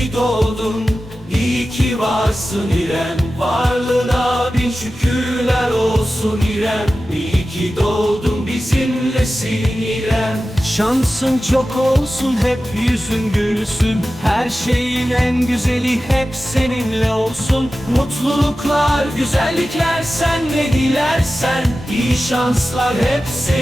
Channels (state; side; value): normal; both; correlation 0.94